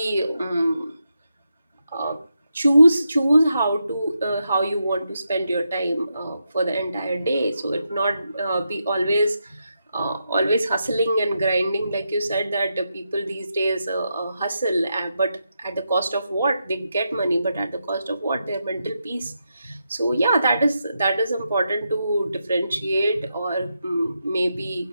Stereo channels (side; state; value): both; inverted; correlation -0.85